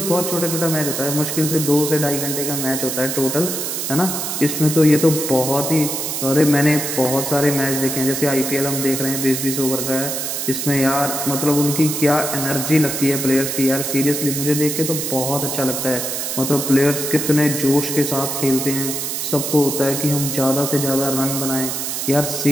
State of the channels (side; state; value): right; noise; hiss, 3 dB below the sound